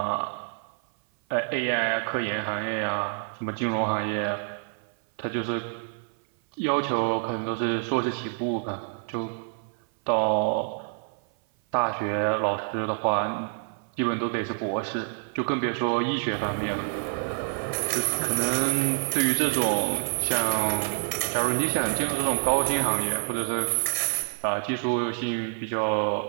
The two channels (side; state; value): left; silent; 57 dB below the other